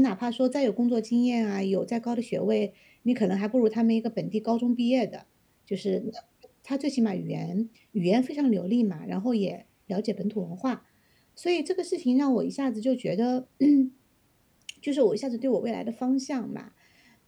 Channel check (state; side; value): identical; both; correlation 1.00